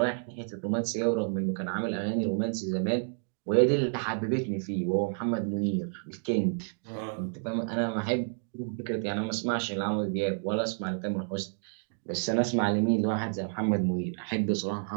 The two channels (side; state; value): left; silent; digital silence